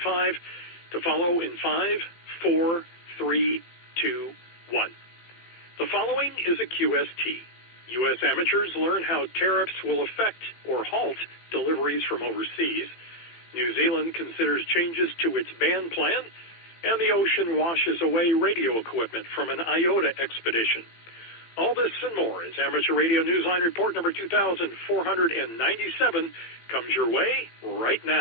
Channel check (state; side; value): late; right; 18 ms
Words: to follow in 5, 4, 3, 2, 1. The following is a QST. U.S. amateurs learn how tariffs will affect or halt deliveries from overseas. New Zealand considers changes to its ban plan, and the ocean washes away radio equipment from an IOTA expedition. All this and more as Amateur Radio Newsline report number 2497 comes your way right